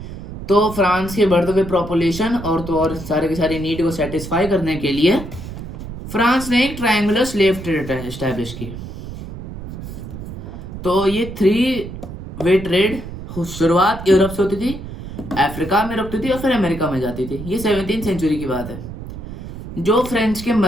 तो फ्रांस के बढ़ते हुए पॉपुलेशन और तो और सारे के सारे नीड को सेटिस्फाई करने के लिए फ्रांस ने एक ट्रायंगुलर स्लेव ट्रेड एस्टैब्लिश की। तो ये 3 वे ट्रेड शुरुआत यूरोप से होती थी, अफ्रीका में रुकती थी और फिर अमेरिका में जाती थी। ये 17वीं सेंचुरी की बात है। जो फ्रेंच के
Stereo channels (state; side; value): noise; right; rumble, 10 dB below the sound